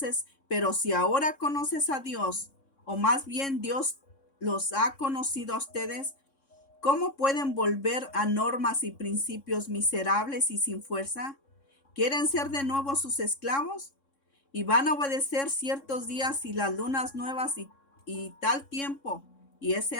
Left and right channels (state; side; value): late; right; 3.6 ms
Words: pero si ahora conoces a Dios, o más bien Dios los ha conocido a ustedes, ¿cómo pueden volver a normas y principios miserables y sin fuerza? ¿Quieren ser de nuevo sus esclavos? y van a obedecer ciertos días y las lunas nuevas y tal tiempo y ese